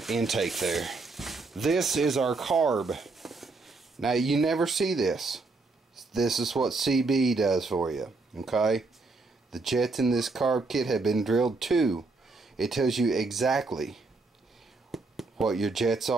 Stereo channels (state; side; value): quieter; left; 3.7 dB